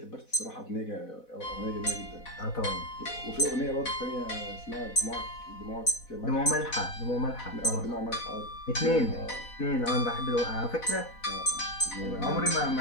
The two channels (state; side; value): late; right; 4.1 ms